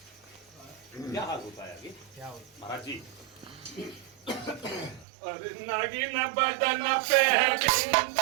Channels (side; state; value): left; drops out; at 5.1 s